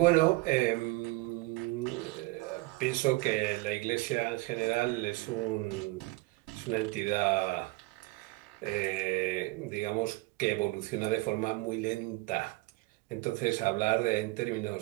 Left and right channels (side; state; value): left; quieter; 21.7 dB